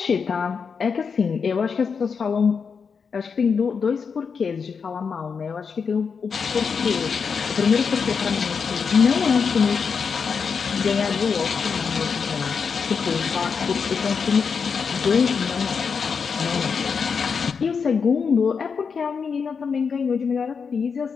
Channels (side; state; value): right; quieter; 5.8 dB